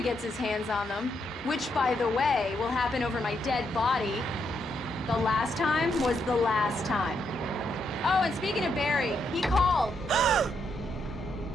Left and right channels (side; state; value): both; normal; correlation 0.78